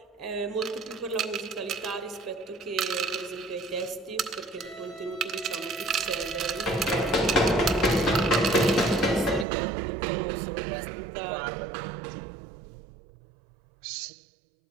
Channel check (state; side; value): drops out; left; at 9.5 s